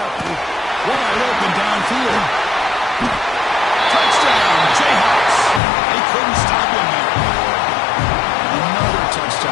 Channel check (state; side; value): drops out; right; at 5.6 s